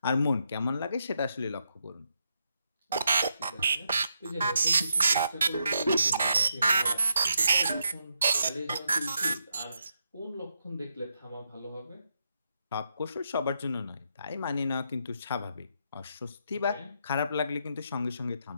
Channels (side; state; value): both; inverted; correlation -0.80